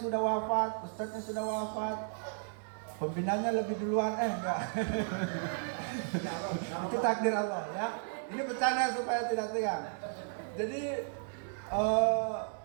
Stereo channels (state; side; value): silent; left; digital silence